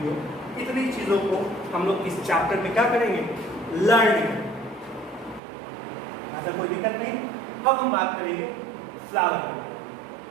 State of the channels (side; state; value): left; drops out; at 5.4 s